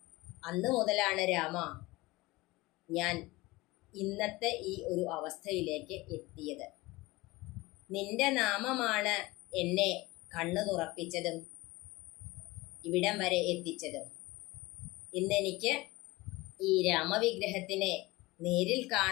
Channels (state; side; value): quieter; right; 21.0 dB